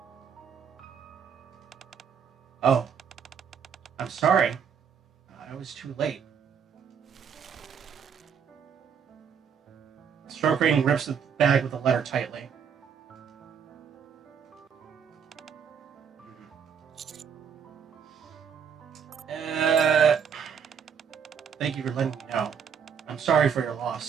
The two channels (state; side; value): quieter; left; 7.2 dB